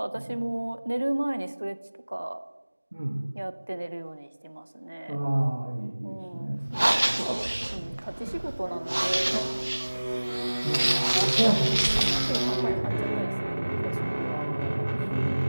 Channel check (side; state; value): both; inverted; correlation -1.00